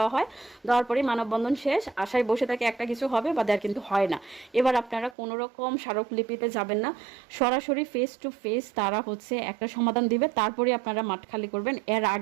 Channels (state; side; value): drops out; left; at 5.2 s